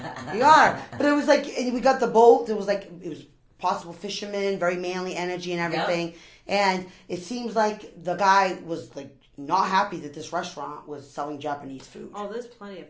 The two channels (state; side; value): identical; both; correlation 1.00